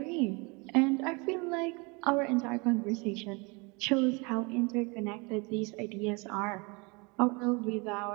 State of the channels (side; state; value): left; quieter; 29.0 dB